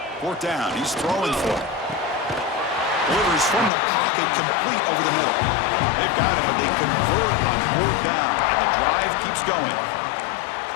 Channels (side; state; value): right; drops out; at 3.7 s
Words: 4th down. He's throwing for it. Delivers from the pocket, complete over the middle. They've got it, but they convert on 4th down, and the drive keeps going.